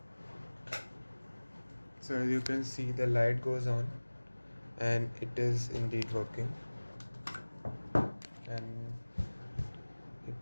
So as you can see, the light goes on and it is indeed working, and it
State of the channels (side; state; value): both; inverted; correlation -1.00